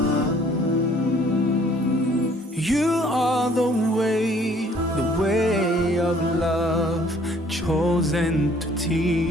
are the way of love, chosen to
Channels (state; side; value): normal; both; correlation 0.58